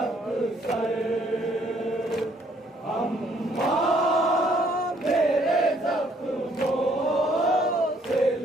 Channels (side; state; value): both; normal; correlation 0.65